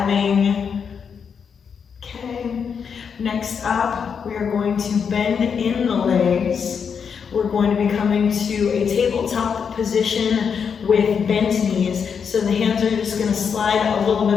Okay, next up, we are going to bend in the legs. We're going to be coming to a tabletop position with bent knees. So the hands are just going to slide a little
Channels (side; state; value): right; quieter; 6.6 dB